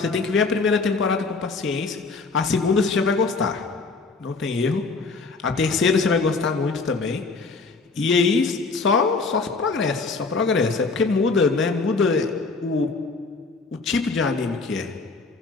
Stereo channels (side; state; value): right; quieter; 4.1 dB